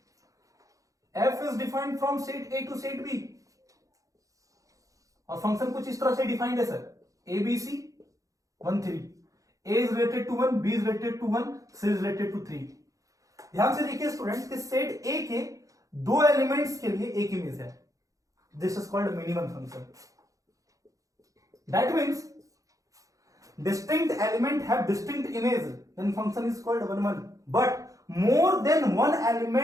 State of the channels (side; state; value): left; late; 0.16 ms